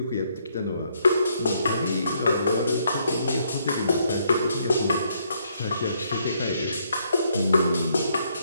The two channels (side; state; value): both; inverted; correlation -0.72